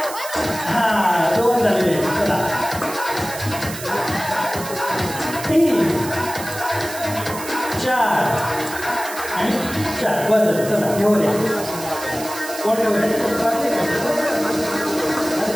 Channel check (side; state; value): right; noise; hiss, 11 dB below the sound